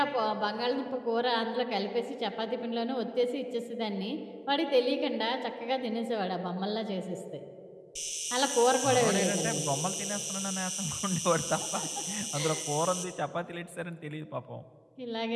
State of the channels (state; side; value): identical; both; correlation 1.00